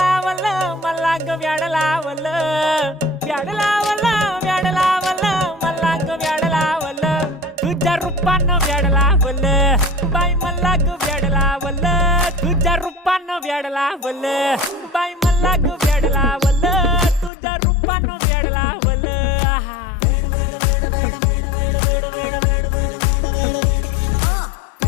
मला ग व्याड लावलं व्याड लावलं व्याड लावलं मला ग व्याड लावलं तुझ्या रूपानं व्याड लावलं बाई मला ग व्याड लावलं तुझ्या रूपानं व्याड लावलं बाई मला ग व्याड लावलं तुझ्या रूपानं व्याड लावलं आहा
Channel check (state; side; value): drops out; right; at 17.3 s